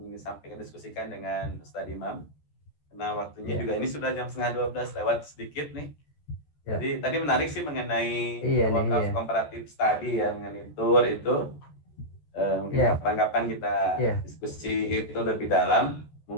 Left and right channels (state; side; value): late; right; 13 ms